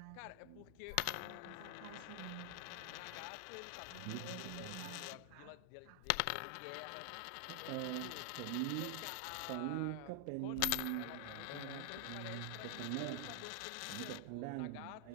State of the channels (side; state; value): both; different; correlation 0.00